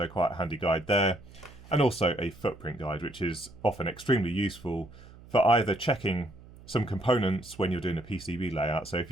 quite a handy guide there. And also a footprint guide, which is often extremely useful for either checking some components when you're doing a PCB layout. So if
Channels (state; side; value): noise; right; hum, 20 dB below the sound